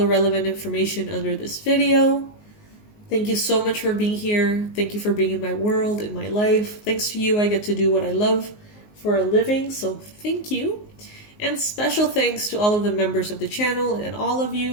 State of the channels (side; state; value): right; late; 19 ms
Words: relevant information under this video. Thank you so much for being here. Thank you for being in my world, in my life. Thanks to you, I get to do what I love for a living, so thank you. And special thanks to all of the members of the channel and all of